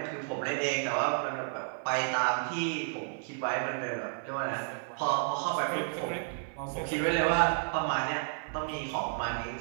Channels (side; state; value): left; silent; 57 dB below the other